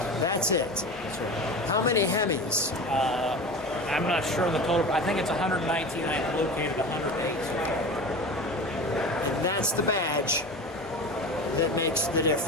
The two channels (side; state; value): both; normal; correlation 0.31